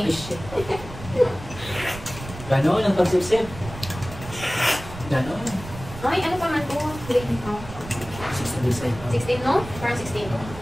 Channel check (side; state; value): right; noise; rumble, 13 dB below the sound